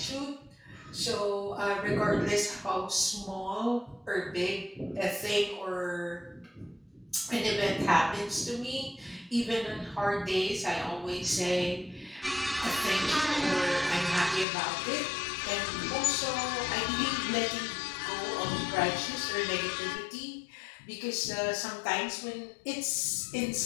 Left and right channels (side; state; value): right; drops out; at 14.5 s